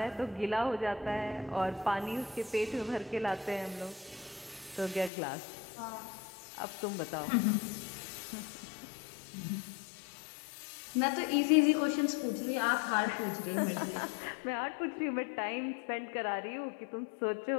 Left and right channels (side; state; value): right; drops out; at 5.1 s